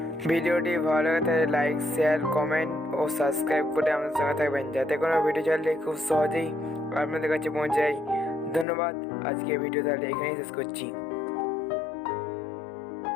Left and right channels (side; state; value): right; drops out; at 8.7 s